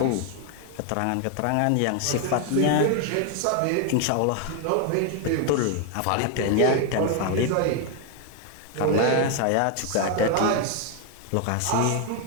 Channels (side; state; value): both; different; correlation 0.01